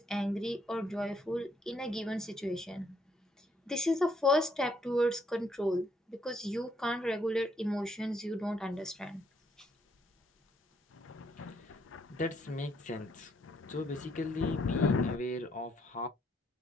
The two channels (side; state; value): both; normal; correlation 0.71